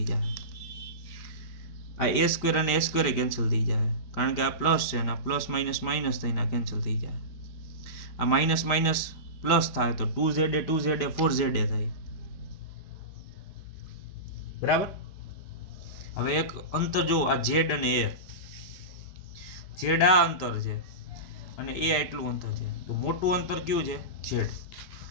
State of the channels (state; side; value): late; right; 5.2 ms